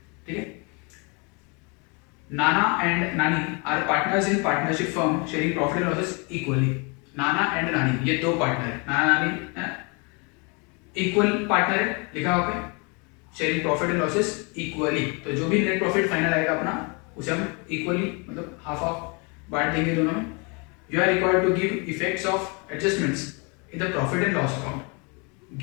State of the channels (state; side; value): quieter; right; 31.9 dB